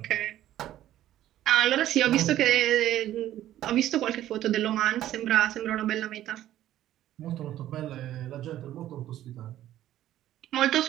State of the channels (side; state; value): left; quieter; 13.0 dB